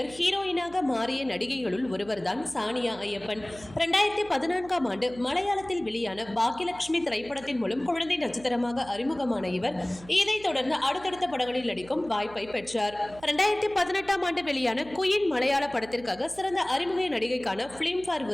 ஹீரோயினாக மாறிய நடிகைகளுள் ஒருவர்தான் சானியா ஐயப்பன். 2014ஆம் ஆண்டு மலையாளத்தில் வெளியான பாக்கியலட்சுமி திரைப்படத்தின் மூலம் குழந்தை நட்சத்திரமாக அறிமுகமான இவர் இதைத் தொடர்ந்து அடுத்தடுத்த படங்களில் நடிக்கும் வாய்ப்பை பெற்றார். 2018ஆம் ஆண்டு வெளியான குயின் மலையாள படத்திற்காக சிறந்த அறிமுக நடிகைக்கான பிலிம்பேர்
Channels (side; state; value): right; noise; hum, 20 dB below the sound